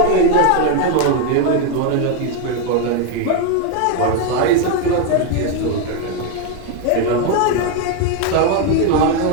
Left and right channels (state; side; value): different; both; correlation 0.01